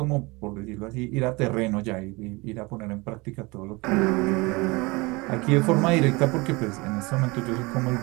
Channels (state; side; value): quieter; left; 25.1 dB